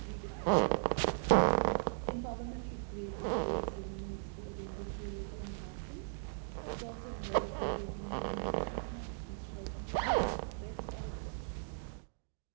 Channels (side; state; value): left; silent; digital silence